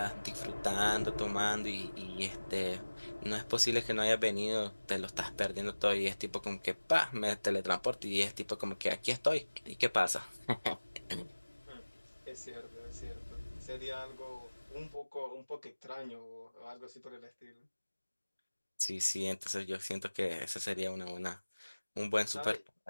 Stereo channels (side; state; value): both; inverted; correlation -1.00